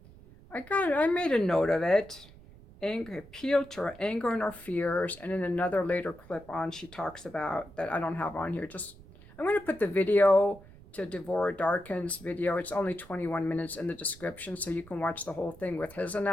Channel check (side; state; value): right; noise; rumble, 21 dB below the sound